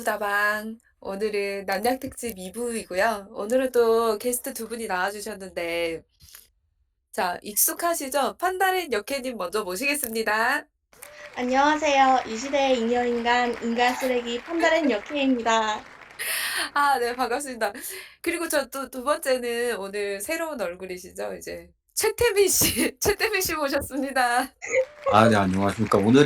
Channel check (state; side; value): identical; both; correlation 1.00